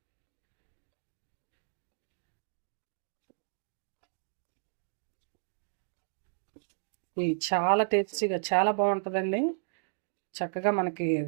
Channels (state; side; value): silent; left; digital silence